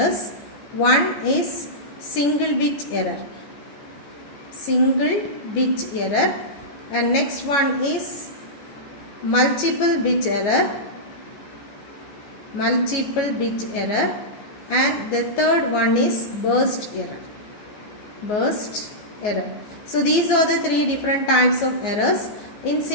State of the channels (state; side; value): late; right; 14 ms